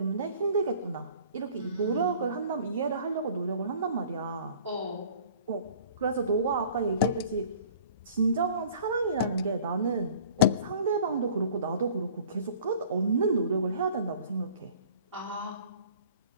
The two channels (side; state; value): both; inverted; correlation -0.49